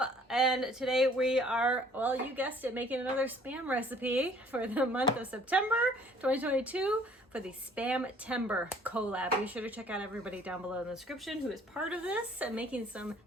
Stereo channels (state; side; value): normal; both; correlation 0.56